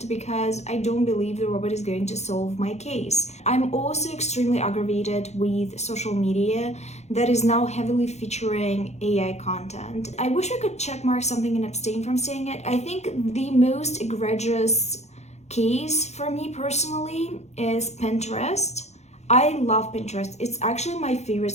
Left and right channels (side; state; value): right; late; 0.32 ms